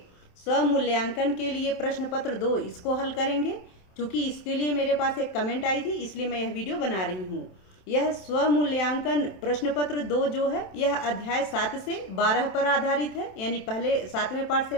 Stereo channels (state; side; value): late; right; 27 ms